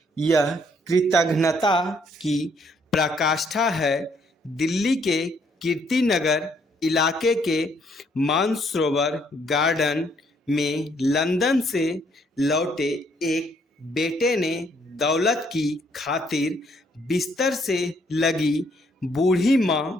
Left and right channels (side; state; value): both; normal; correlation 0.68